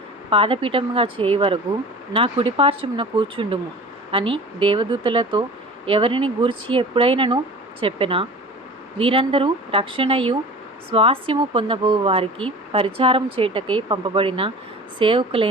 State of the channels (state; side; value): normal; both; correlation 0.39